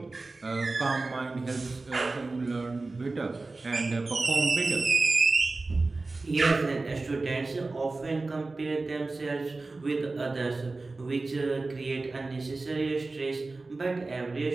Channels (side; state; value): left; quieter; 3.4 dB